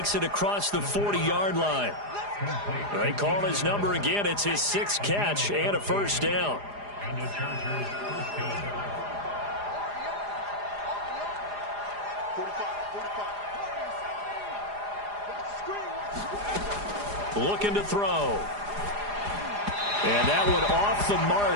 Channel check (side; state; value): left; late; 4.9 ms